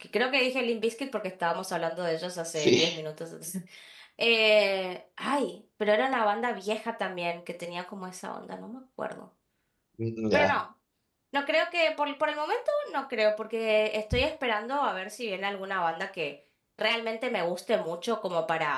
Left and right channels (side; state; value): both; identical; correlation 1.00